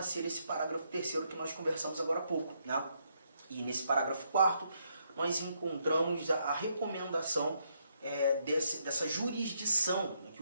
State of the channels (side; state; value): both; inverted; correlation -0.75